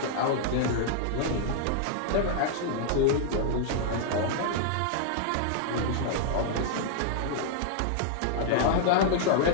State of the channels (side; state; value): both; different; correlation -0.01